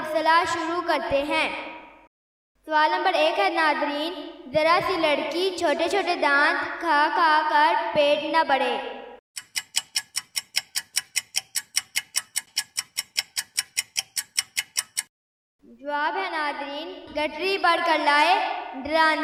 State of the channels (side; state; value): both; identical; correlation 1.00